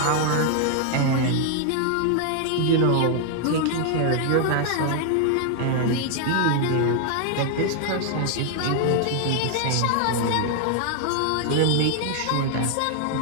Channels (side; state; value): both; different; correlation 0.00